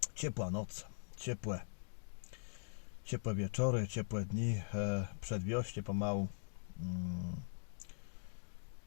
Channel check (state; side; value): silent; right; digital silence